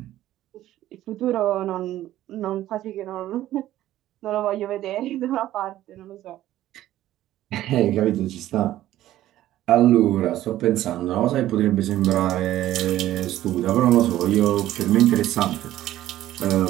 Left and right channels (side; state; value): left; quieter; 13.8 dB